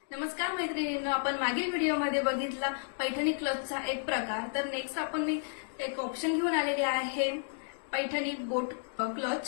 नमस्कार मैत्रिणींनो, आपण मागील व्हिडिओमध्ये बघितला पैठणी क्लचचा एक प्रकार. तर नेक्स्ट आपण एक ऑप्शन घेऊन आलेले आहे पैठणी बोट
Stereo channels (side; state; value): right; silent; digital silence